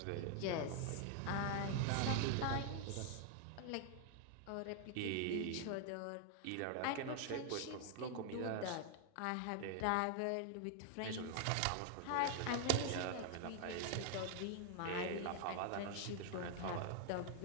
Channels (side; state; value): both; different; correlation 0.00